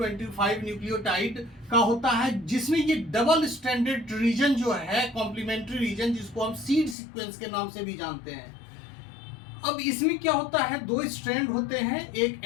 न्यूक्लियोटाइड का होता है, जिसमें ये डबल स्ट्रैंडेड रीजन जो है, कॉम्प्लीमेंट्री रीजन, जिसको हम सीड सीक्वेंस के नाम से भी जानते हैं। अब इसमें क्या होता है, दो स्ट्रैंड होते हैं। एक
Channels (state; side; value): drops out; right; at 7.0 s